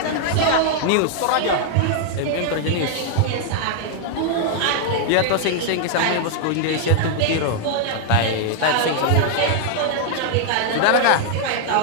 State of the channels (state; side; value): different; both; correlation -0.01